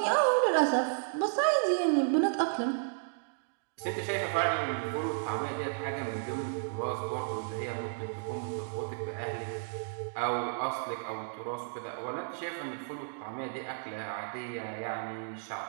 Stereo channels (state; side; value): silent; left; digital silence